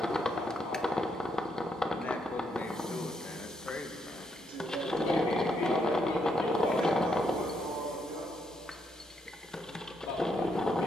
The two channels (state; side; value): normal; both; correlation 0.76